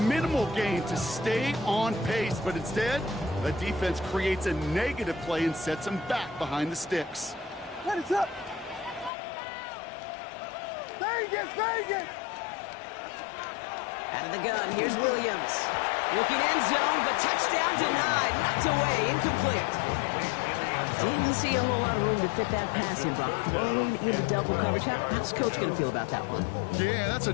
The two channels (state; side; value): drops out; right; at 9.1 s